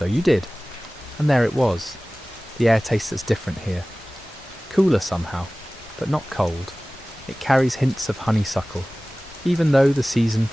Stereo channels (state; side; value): normal; both; correlation 0.98